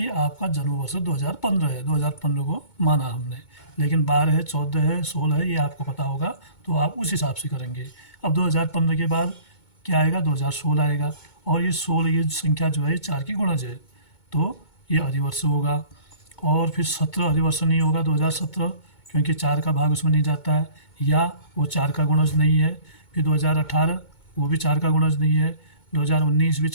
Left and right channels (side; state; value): right; late; 2.2 ms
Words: आपका जन्म वर्ष 2015 है, 2015 को माना हमने, लेकिन 12 है, 14 है, 16 है, ये आपको पता होगा तो आप उस हिसाब से करेंगे। अब 2015 के बाद क्या आएगा? 2016 आएगा, और ये 16 ये संख्या जो है ये 4 की गुणज है, तो ये अधिवर्ष होगा। और फिर 17 अधिवर्ष नहीं होगा 2017, क्योंकि 4 का भाग उसमें नहीं जाता है, या वो 4 का गुणज नहीं है। फिर 2018 वो भी 4 का गुणज नहीं है, 2019 भी